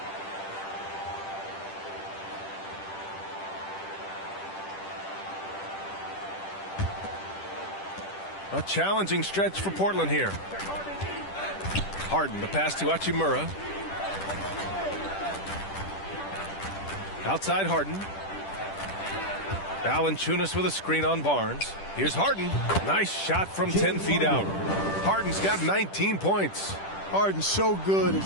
A challenging stretch for Portland here. Harden, the pass to Hachimura. Outside Harden. Valanciunas with a screen on Barnes. Here's Harden. Nice shot from 10 feet out. Harden's got 19 points. Harden's so good at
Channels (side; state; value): right; late; 10 ms